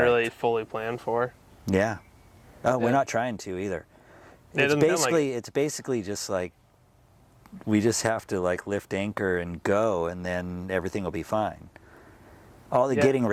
fully plan for. Yeah. Oh, we're not trying to either. It's basically just like we just have to like lift anchor and go, and then everything will be fine. All the getting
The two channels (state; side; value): identical; both; correlation 1.00